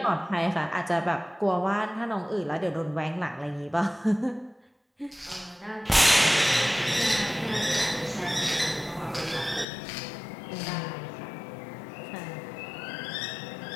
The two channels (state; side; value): drops out; right; at 9.7 s